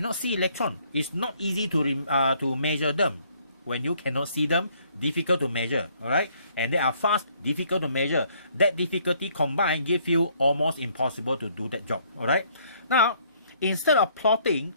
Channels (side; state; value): both; inverted; correlation -0.64